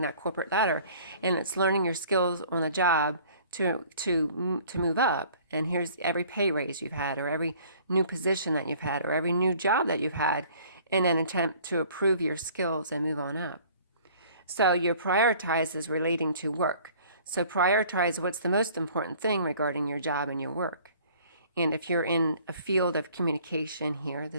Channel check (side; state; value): both; inverted; correlation -0.53